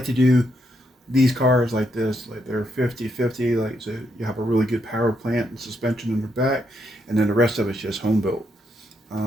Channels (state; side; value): normal; both; correlation 0.78